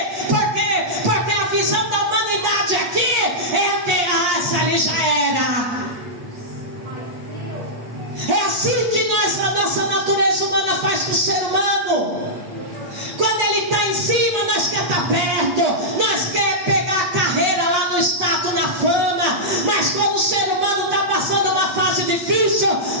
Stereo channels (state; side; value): late; left; 8.4 ms